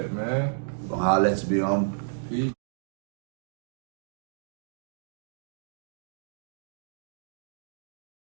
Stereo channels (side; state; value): left; silent; digital silence